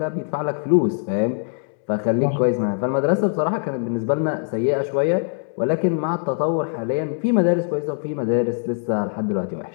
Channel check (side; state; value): right; silent; 64 dB below the other